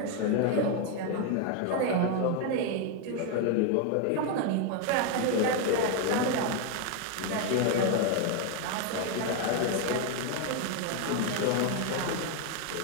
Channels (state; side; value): different; both; correlation 0.01